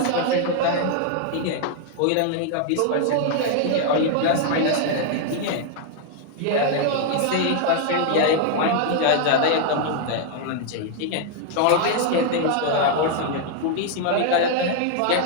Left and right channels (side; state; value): both; different; correlation 0.00